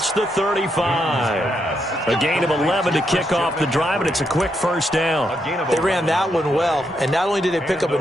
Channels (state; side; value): normal; both; correlation 0.80